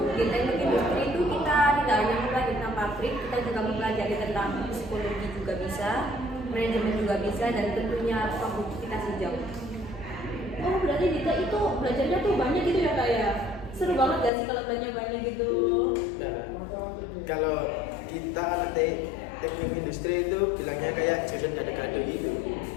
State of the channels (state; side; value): drops out; right; at 14.3 s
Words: di teknik industri itu kita tidak hanya mempelajari tentang pabrik, kita juga mempelajari tentang psikologi juga bisa, manajemen juga bisa, dan tentunya produktivitas hijau. Oh, berarti Dita itu belajarnya tuh banyak gitu ya kak ya? Seru banget gak sih kalau belajar banyak gitu? Nah, kalau kita anak teknik industri itu bilangnya kayak jurusan gado-gado gitu.